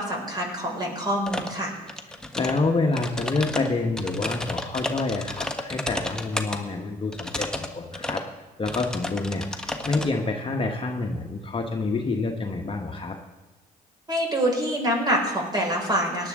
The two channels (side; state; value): both; normal; correlation 0.57